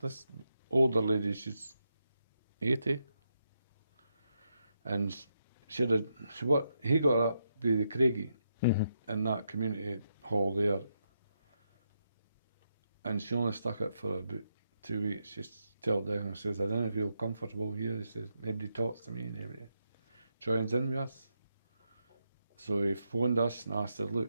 older lady, she's 80. And he got up with the Craigie in that community hall there. And she only stuck it for about 2 weeks. She told Declan, she says, I don't feel comfortable here. He says, nobody talks to me, nobody joins in with us. So he phoned us and asked her, look,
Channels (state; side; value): inverted; both; correlation -0.82